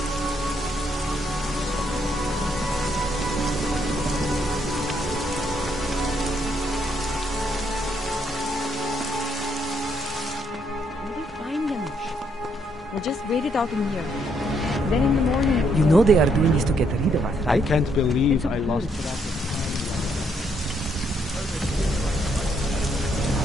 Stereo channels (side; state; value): both; normal; correlation 0.73